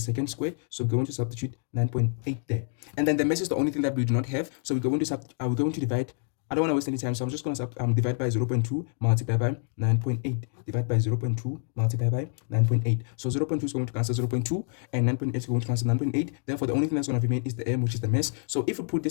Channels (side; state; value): right; silent; 56 dB below the other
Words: squared. So we're going to substitute 9.8 there, and then the mass is the only thing that we do not have, so we're going to divide. I don't want to waste any time, so I'm just going to divide by 0.2 multiplied by 9.8. Divide by 0.2 multiplied by 9.8. So 0.2 is going to cancel 0.2, and 9.8 is going to cancel 9.8. Therefore, the only thing that's going to remain is the m, which is the mass. So if we put